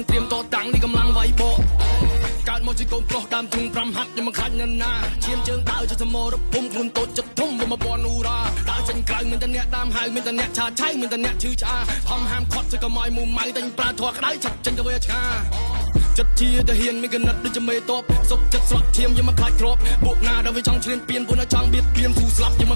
ត្រៀមតតាំងនេះកម្លាំងវាយបកកើតមកជាកូនប្រុសដើមទ្រូង5ហាត់ខ្ញុំមិនខ្លាចណាស់ណាឈាមជើងដើរចសមរភូមិខ្លួនតូចចិត្តធំបំពន់អ៊ូរ៉ាដើរចេញក្រៅមានតែអ្នកតាមហៅមានតែអ្នកឆាឆៃមានតែអ្នកឈឺឆ្អាហំហាមខត់ទៅកុំឲ្យមូម៉ៅតែប្រើធွာក្តៅឆាប់ចេញទៅវាឆ្ងាចិត្តជាទៅហ៊ានមានកណិតដូចជាមេតបសុកចិត្តស្រក់ឈាមយើងមិនខ្លាចគ្របពួកណាដែលវាចង់ឈ្លានពានពួកណាចង់បៀតបៀនស៊ូស្លាប់យើងមិ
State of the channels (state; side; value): inverted; both; correlation -1.00